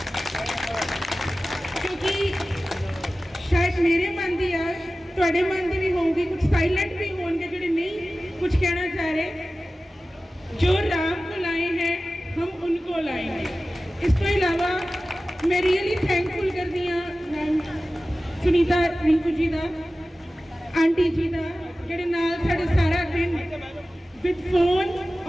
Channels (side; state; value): both; normal; correlation 0.96